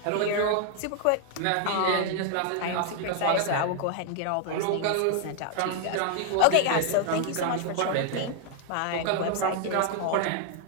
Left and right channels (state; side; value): different; both; correlation 0.00